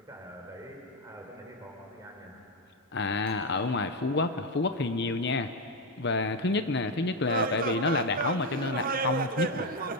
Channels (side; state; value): both; normal; correlation 0.08